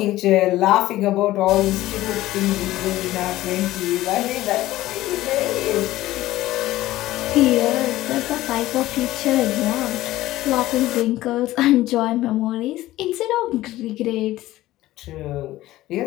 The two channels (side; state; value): right; quieter; 16.0 dB